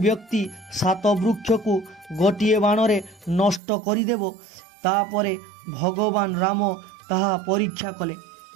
7 वृक्ष को गोटिए बाणरे नष्ट करिदेव, तापरे भगवान राम ताहा परीक्षा कले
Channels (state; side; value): drops out; left; at 3.6 s